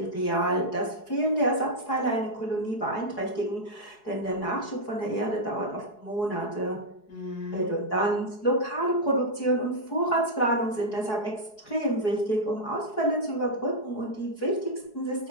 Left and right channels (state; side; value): late; right; 4.7 ms